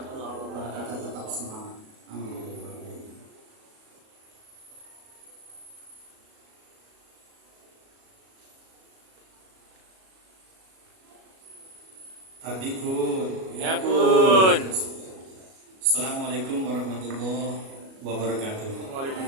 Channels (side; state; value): left; late; 37 ms